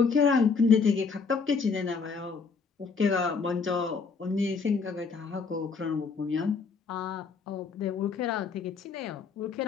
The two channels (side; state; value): right; quieter; 5.1 dB